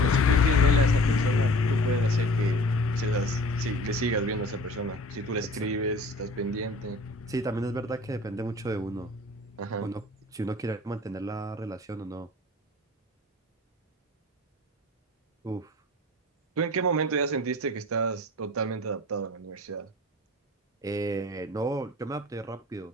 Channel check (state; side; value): normal; both; correlation 0.44